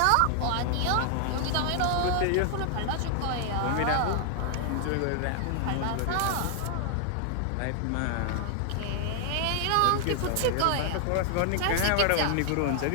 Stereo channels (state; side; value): different; both; correlation 0.00